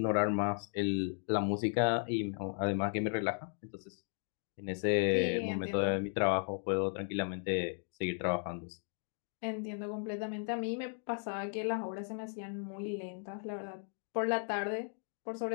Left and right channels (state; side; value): silent; right; 54 dB below the other